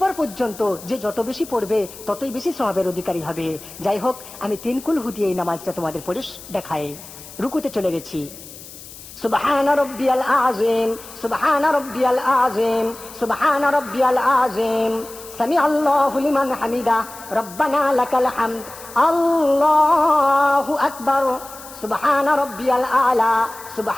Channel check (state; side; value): noise; left; hiss, 16 dB below the sound